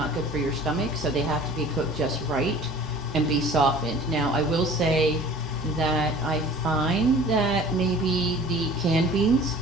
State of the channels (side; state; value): both; normal; correlation 0.46